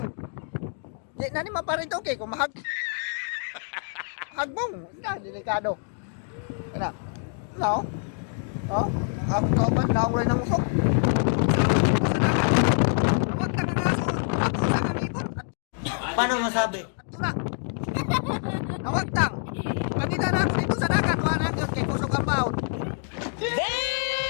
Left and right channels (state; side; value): silent; right; 61 dB below the other